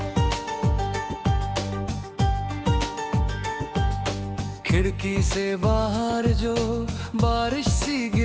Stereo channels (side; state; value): both; identical; correlation 1.00